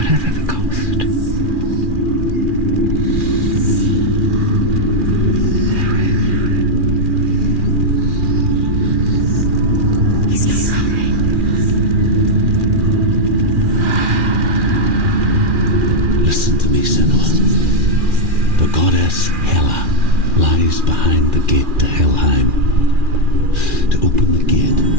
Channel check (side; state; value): left; late; 2.4 ms